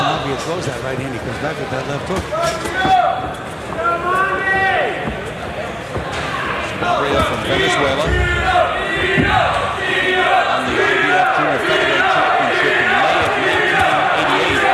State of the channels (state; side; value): identical; both; correlation 1.00